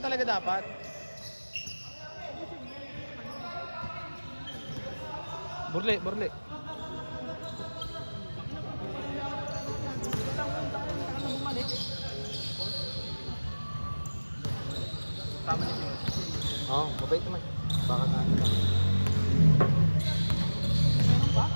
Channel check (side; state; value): both; inverted; correlation -1.00